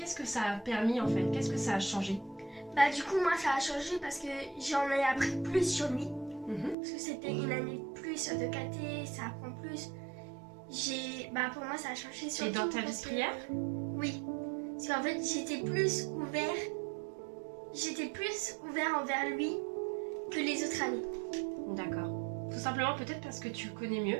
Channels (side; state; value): left; drops out; at 6.8 s